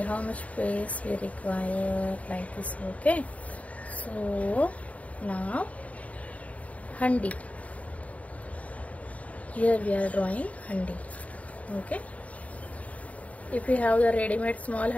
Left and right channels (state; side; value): late; right; 0.068 ms